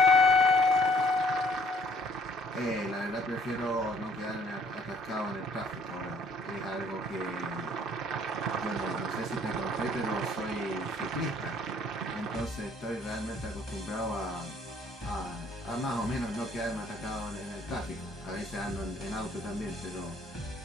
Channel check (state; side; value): normal; both; correlation 0.61